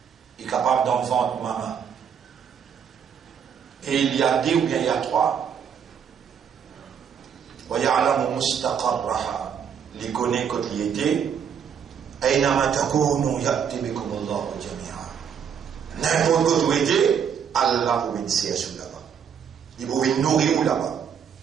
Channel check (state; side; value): quieter; left; 7.7 dB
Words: Il est capable d'en vendre maman. Et il y a deux ou bien il y a trois. Wa ya'lamu mustaqarraha. Il connaît quand il était. Aynama takunu ya'ti bikum Allahu jami'a. N'importe où tu étais, Allah vous bénissait là-bas. Il vous nourrir là-bas.